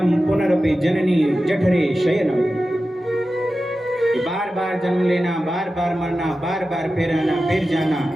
पुनरपि जननी जठरे शयनम। बार बार जन्म लेना, बार बार मरना, बार बार फिर आना फिर जाना,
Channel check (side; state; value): both; normal; correlation 0.93